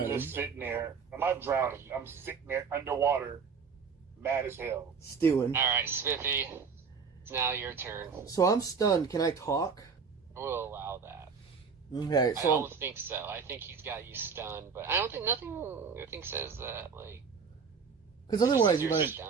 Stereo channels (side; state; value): left; quieter; 5.7 dB